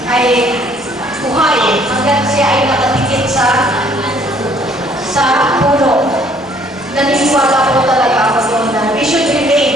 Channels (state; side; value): normal; both; correlation 0.61